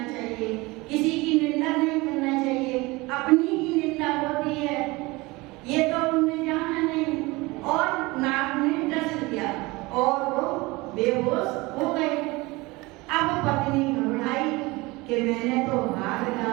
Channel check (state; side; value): quieter; left; 22.8 dB